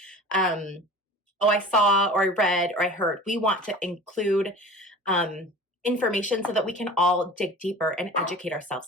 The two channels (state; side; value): normal; both; correlation 0.39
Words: oh, I saw, or I read, or I heard. We want to include information so that we can all dig deeper and educate ourselves